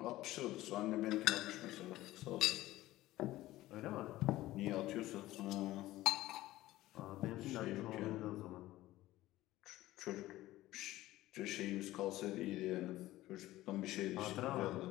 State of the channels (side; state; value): right; quieter; 16.3 dB